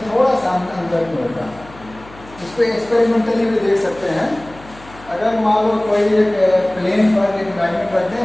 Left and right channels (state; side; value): noise; left; hum, 21 dB below the sound